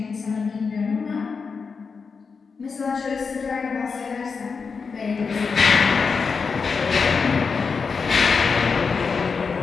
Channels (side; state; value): right; quieter; 5.2 dB